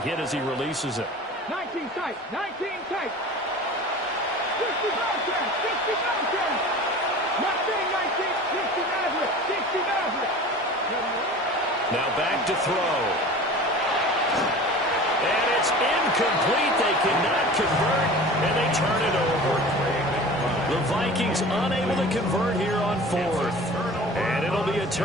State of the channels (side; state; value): both; normal; correlation 0.39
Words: as he releases it. 19 tight, 19 tight. 60 mountain, 60 mountain. Not being 19, 60 Maverick, 60 Maverick. Now back to throw. And it's incomplete. They cannot convert, and they turn it over. The Vikings unable to convert here on 4th. And it'll be a